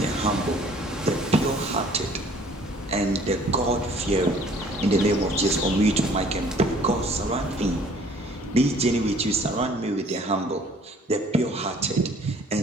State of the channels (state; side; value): normal; both; correlation 0.55